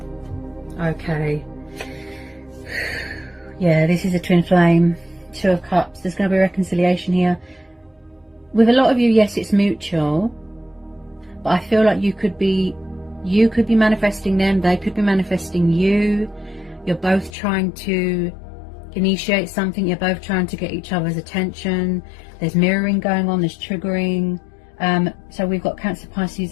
Okay. Yeah, this is a twin flame. Two of Cups. There's going to be reconciliation here. With a lot of you, yes, it's mutual, but I feel like you could be manifesting them, they could be manifesting you. You're both trying to initiate something, you're both trying to get each other's attention. There's mirroring going on, there's triggering. So we've got Cancer,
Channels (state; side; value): drops out; right; at 17.4 s